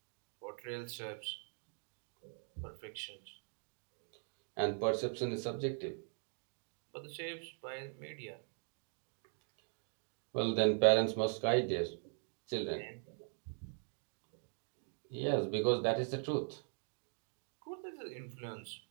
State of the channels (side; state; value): left; silent; 50 dB below the other